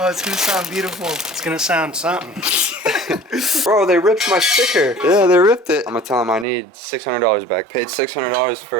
Oh, it's gonna sound beautiful. It's gonna sound something. Bro, they ripped my sticker. Yeah, they ripped it. I'm gonna tell them I need $600 back. Paid $600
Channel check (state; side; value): drops out; left; at 6.5 s